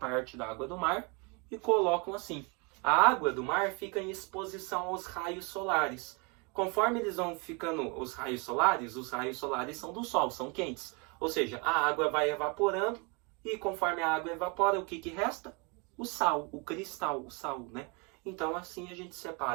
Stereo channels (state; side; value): quieter; left; 31.6 dB